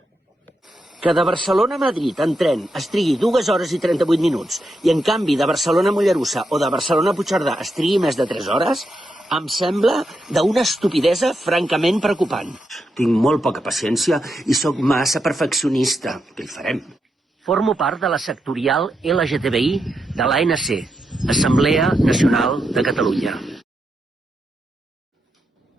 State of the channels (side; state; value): both; normal; correlation 0.84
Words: Que de Barcelona a Madrid en tren es trigui 2 hores i 38 minuts i en canvi de Barcelona a Mollerussa o de Barcelona a Puigcerdà es trigui més de 3 hores, em sembla d'una estupidesa francament preocupant. Tinc molt poca paciència i sóc massa perfeccionista. Què hi farem? Formo part de la sectorial LGTBI de l'ANC, Assemblea Nacional de Catalunya.